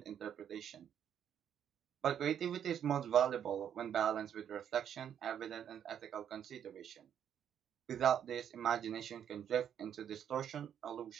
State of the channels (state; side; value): quieter; left; 9.1 dB